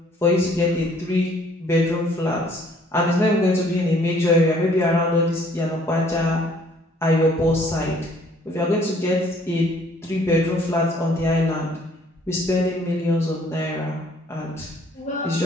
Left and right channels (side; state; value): both; normal; correlation 0.60